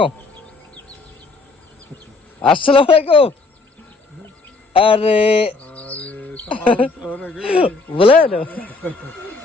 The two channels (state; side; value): quieter; right; 3.8 dB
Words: আসসালামু আলাইকুম। আরে বলেন,